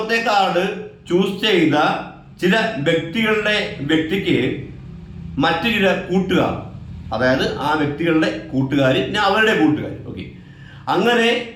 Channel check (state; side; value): identical; both; correlation 1.00